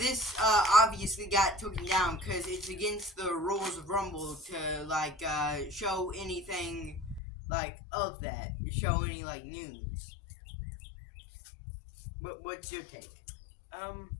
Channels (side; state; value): right; drops out; at 7.2 s